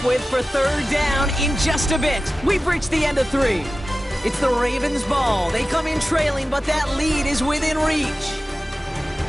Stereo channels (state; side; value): normal; both; correlation 0.95